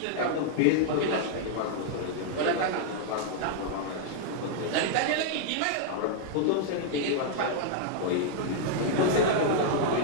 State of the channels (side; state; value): both; different; correlation -0.01